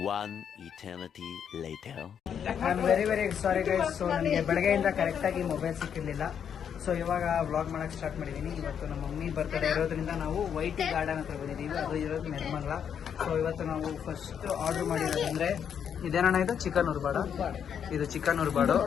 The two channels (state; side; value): quieter; right; 8.1 dB